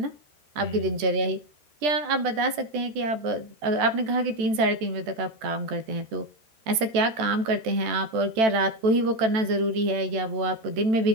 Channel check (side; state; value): left; late; 14 ms